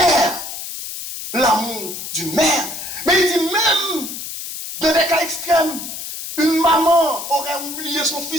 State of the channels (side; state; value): left; noise; hiss, 8 dB below the sound